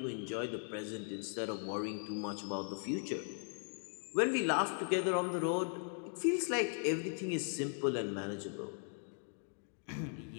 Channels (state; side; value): silent; right; 52 dB below the other